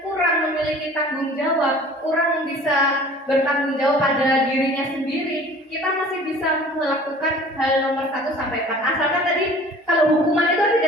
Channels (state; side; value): normal; both; correlation 0.47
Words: kurang memiliki tanggung jawab, kurang bisa bertanggung jawab pada dirinya sendiri, kita masih bisa melakukan hal nomor 1 sampai 4. Asalkan tadi kalau hukuman itu